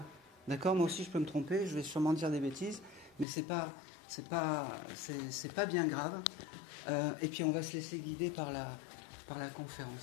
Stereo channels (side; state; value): right; drops out; at 3.2 s